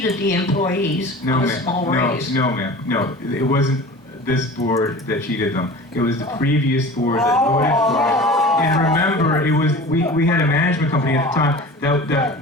the employees No, on a ma'am. small No, raise. no, ma'am. No, it wasn't this board that cheated them. It was the previous board that voted for it. And remember, it was, we had a management company at the time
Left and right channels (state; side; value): normal; both; correlation 0.38